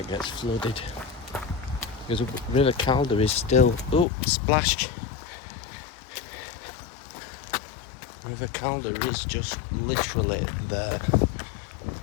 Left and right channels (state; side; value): drops out; right; at 4.0 s